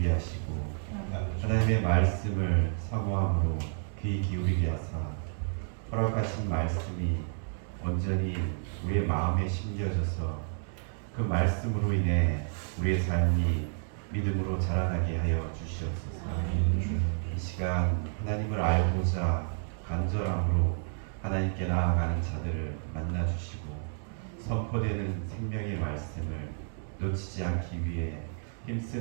하시고 하나님의 말씀을 사모함으로 귀 기울이게 하사 허락하신 말씀이 온전히 우리의 마음에 심겨져서 그 말씀으로 인해 우리의 삶이 믿음으로 자라나게 하여 주시옵소서. 이 시간 하나님을 알고자 간절함으로 하나님께 나아가는 자들을 만나 주시고 선포되는 생명의 말씀을 놓치지 않기 위해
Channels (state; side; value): silent; left; 57 dB below the other